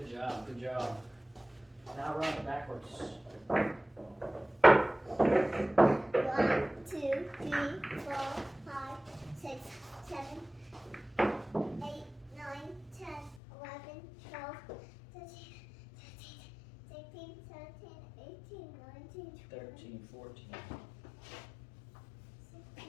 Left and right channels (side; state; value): right; drops out; at 13.4 s